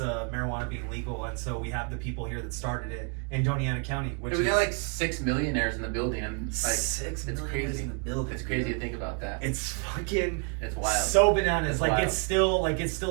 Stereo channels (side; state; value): left; quieter; 37.7 dB